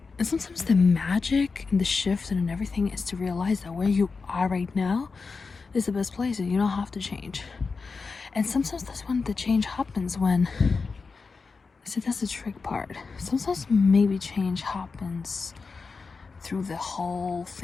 And sometimes the magic and the shift and everything is to realize that where you are right now is the best place and you don't have to change. And sometimes that's when the change happens, when, see, that's the trick part. Sometimes maybe change happens through the whole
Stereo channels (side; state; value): right; quieter; 4.6 dB